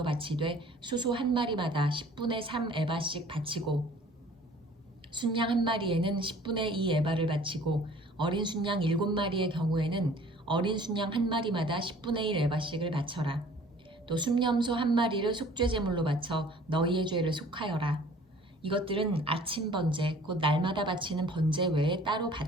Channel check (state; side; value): normal; both; correlation 0.51